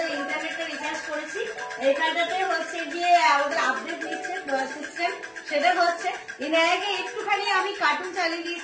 ইন্টারনেটটা রিচার্জ করেছি। এইখানটাতে হচ্ছে গিয়ে আমাদের আপডেট নিচ্ছে সিস্টেম, সেটা হচ্ছে আগে একটুখানি আমি কার্টুন চালিয়ে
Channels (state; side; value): identical; both; correlation 1.00